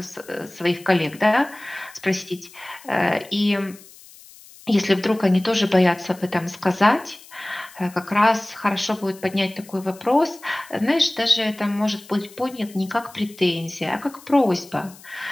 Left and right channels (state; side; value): noise; left; hiss, 22 dB below the sound